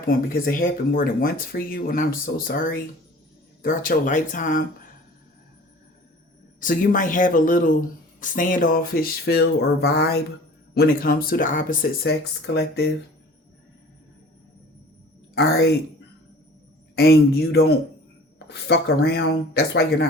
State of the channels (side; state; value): both; normal; correlation 0.46